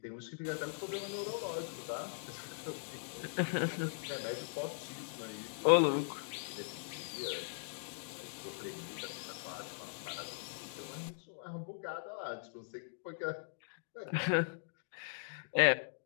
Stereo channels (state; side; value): silent; right; digital silence